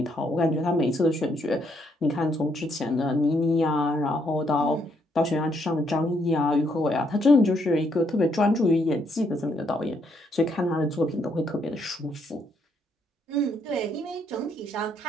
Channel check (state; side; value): normal; both; correlation 0.73